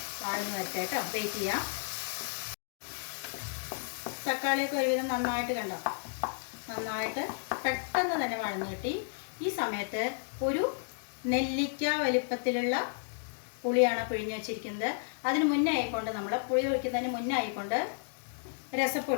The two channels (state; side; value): silent; right; digital silence